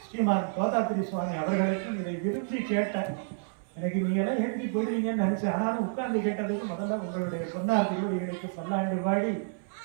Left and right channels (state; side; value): silent; left; 57 dB below the other